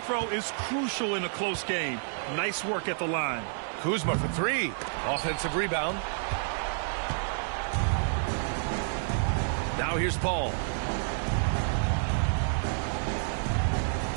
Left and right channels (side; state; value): left; silent; digital silence